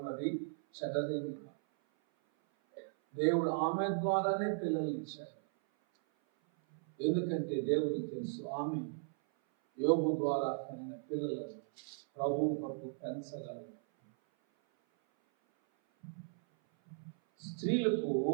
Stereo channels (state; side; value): silent; left; 53 dB below the other